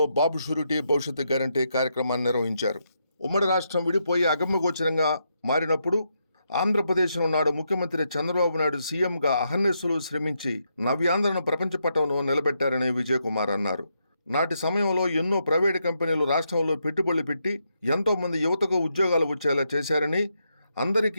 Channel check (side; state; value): both; inverted; correlation -0.81